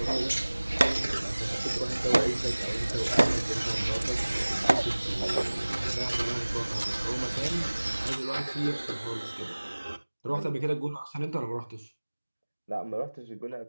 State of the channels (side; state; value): both; inverted; correlation -1.00